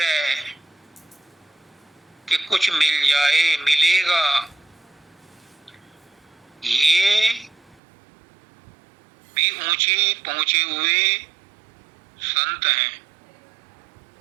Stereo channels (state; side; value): drops out; left; at 7.8 s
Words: कि कुछ मिल जाए, मिलेगा। ये भी ऊंचे पहुंचे हुए संत हैं,